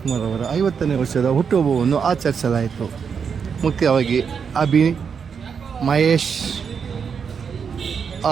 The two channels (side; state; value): left; quieter; 6.5 dB